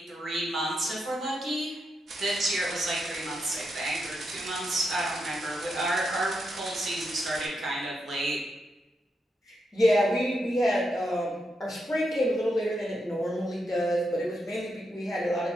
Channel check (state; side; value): normal; both; correlation 0.83